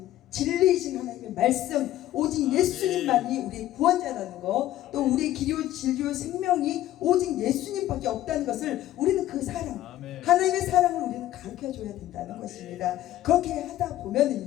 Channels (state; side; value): quieter; right; 13.9 dB